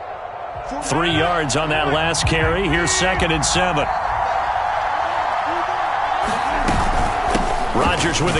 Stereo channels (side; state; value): both; identical; correlation 1.00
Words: Three yards on that last carry. Here's 2nd and 7. Rodgers with